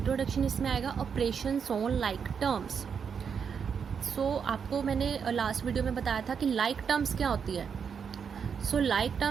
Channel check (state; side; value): quieter; left; 6.7 dB